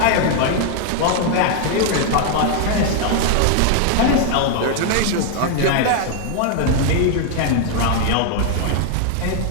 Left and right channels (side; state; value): both; different; correlation 0.00